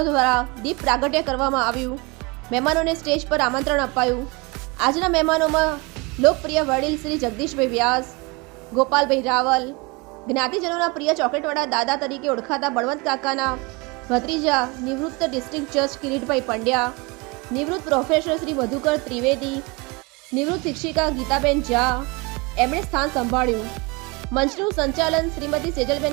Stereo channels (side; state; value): left; quieter; 27.3 dB